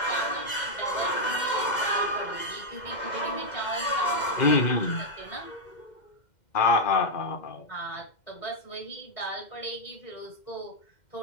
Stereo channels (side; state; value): right; late; 2.1 ms